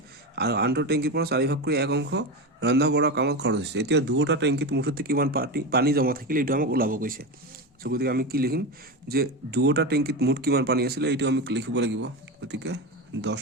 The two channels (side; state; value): both; normal; correlation 0.19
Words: আৰু আনটো টেংকিৰ পৰা 4 ভাগ কৰি 1 অংশ ৰন্ধা বঢ়া কামত খৰচ হৈছে এতিয়া দুটা টেংকিত মুঠতে কিমান পানী জমা থাকিলে এটা আমাক ওলাব কৈছে সো গতিকে আমি কি লিখিম যে দুটা টেংকিত মুঠ কিমান পানী আছিল এইটো আমি লিখিব লাগিব গতিকে 10